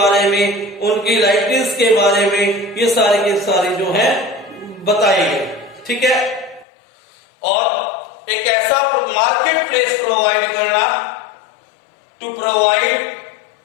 में, उनकी लाइबिलिटीज के बारे में, ये सारे के सारे जो है बताए गए। ठीक है। और एक ऐसा मार्केट प्लेस प्रोवाइड करना, to provide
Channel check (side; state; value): right; drops out; at 6.7 s